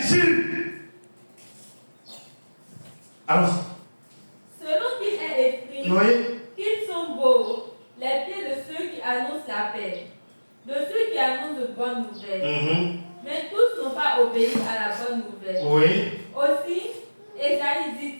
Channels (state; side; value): inverted; both; correlation -1.00